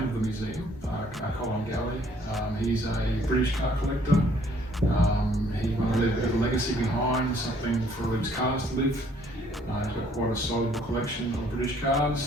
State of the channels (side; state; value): both; normal; correlation 0.62